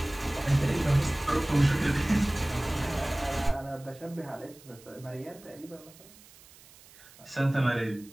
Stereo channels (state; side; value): noise; right; hiss, 23 dB below the sound